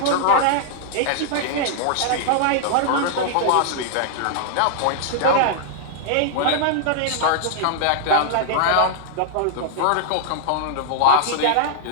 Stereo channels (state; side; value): different; both; correlation -0.01